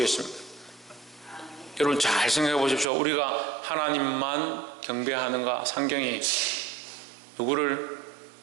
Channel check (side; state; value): left; drops out; at 2.9 s